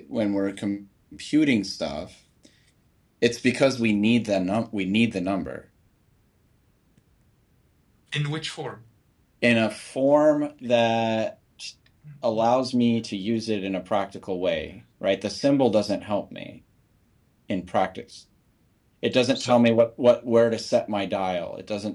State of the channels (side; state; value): both; identical; correlation 1.00